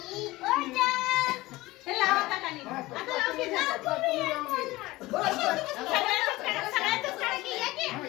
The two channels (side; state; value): right; quieter; 19.4 dB